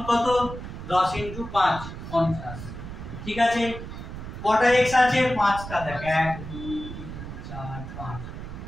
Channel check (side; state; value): right; noise; rumble, 10 dB below the sound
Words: কত? 10 × 5 50, ঠিক আছে? কটা x আছে? 5টা, দেখ 1 2 3 4 5,